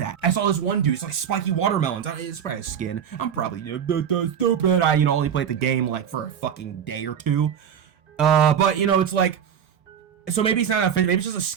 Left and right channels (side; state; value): left; quieter; 8.4 dB